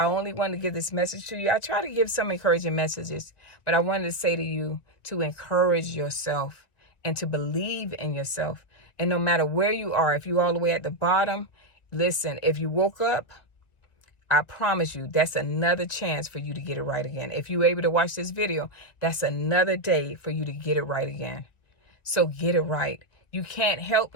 only wanted to give this message to you. I try to give some encouraging messages, but I wanted to say to you to encourage yourself and to believe in yourself. And no matter where you are, if you're all the way at the bottom, listen, if you woke up, I promise you, that's another chance for you to get it right again. If you're able to watch this video, that's another day for you to get it right again. So get it right. You can't help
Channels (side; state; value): right; late; 1.9 ms